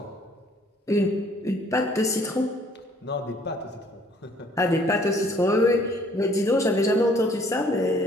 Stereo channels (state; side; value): normal; both; correlation 0.59